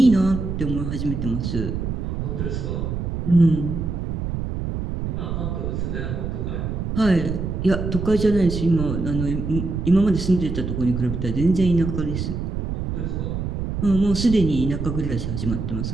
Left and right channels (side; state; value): right; noise; rumble, 3 dB below the sound